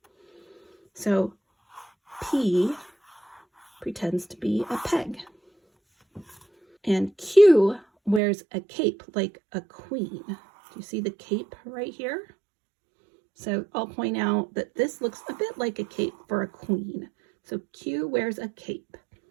So P pretends to be a peg. And Q wears a cape like a queen. Do you see the cape right here? So I'll point out that this looks a bit like a cape for a queen. So Q wears a cape.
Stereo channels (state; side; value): drops out; left; at 8.2 s